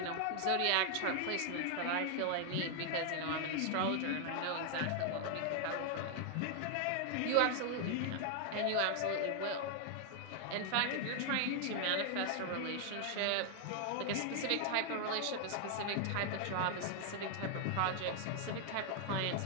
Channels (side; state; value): both; different; correlation 0.00